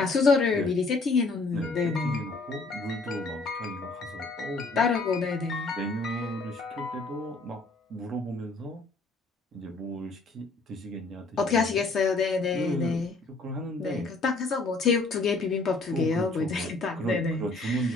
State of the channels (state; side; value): quieter; right; 3.4 dB